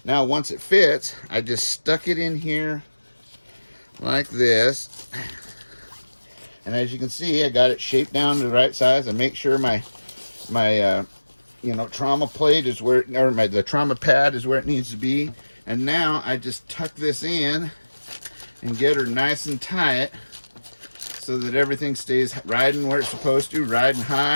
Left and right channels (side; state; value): both; inverted; correlation -1.00